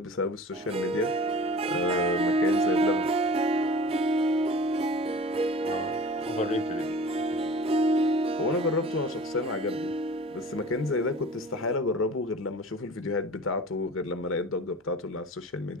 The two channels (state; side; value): normal; both; correlation 0.41